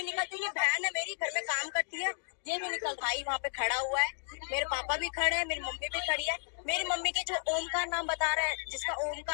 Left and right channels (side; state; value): right; silent; digital silence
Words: निकलते, ये बहन है मेरी घर में काम करती है, ये भी निकल, भाई वहाँ पे खड़ा हुआ है, मेरे पापा भी खड़े हैं, मेरी मम्मी भी खड़ी है। मेरी मम्मी के जो ओमकार नाम बता रहा है, जिसका